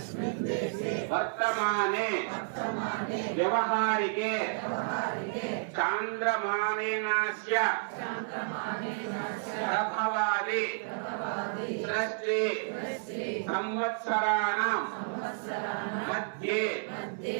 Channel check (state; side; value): silent; left; digital silence